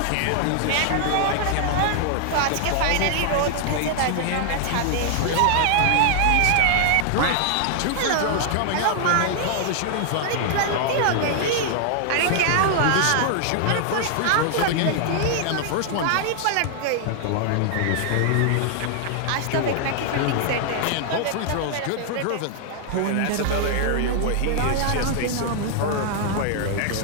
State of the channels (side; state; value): both; different; correlation 0.00